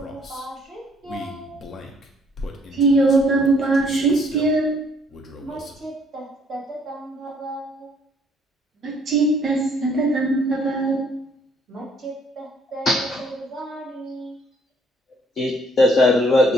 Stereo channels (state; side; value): normal; both; correlation 0.63